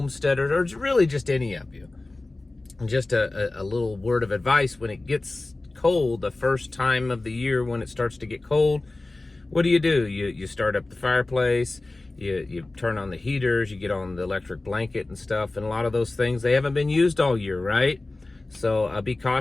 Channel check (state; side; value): quieter; right; 3.0 dB